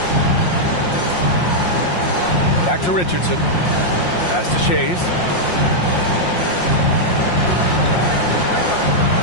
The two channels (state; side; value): late; right; 5.7 ms